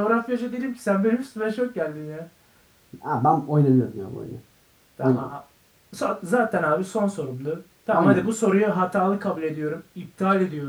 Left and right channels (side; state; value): both; identical; correlation 1.00